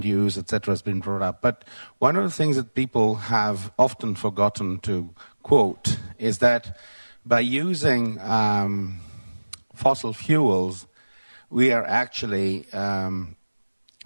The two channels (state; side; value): inverted; both; correlation -1.00